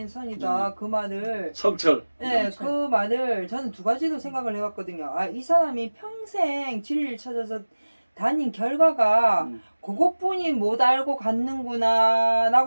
선이다. 그 말을 성철. 그 말을 저는 두 가지로 생각을 해봤거든요. 이 사람이 평생 진리를 찾아서 다닌 결과가 그것뿐이 못 알고 갔는구나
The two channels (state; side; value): inverted; both; correlation -1.00